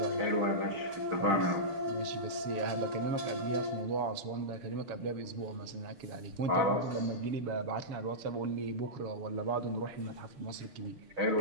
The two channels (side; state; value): left; late; 7.1 ms